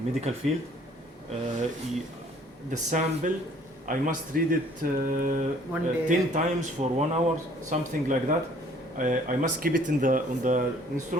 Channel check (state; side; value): normal; both; correlation 0.57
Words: medical field. The sample, I must read it One day. 10 times for 1 hour, something like that. I must keep it on the